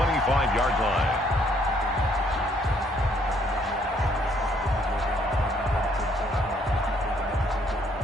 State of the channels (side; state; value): both; normal; correlation 0.66